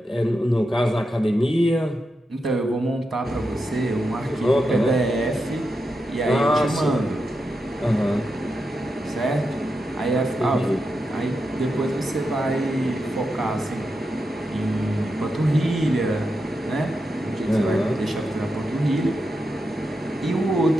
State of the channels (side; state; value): both; normal; correlation 0.87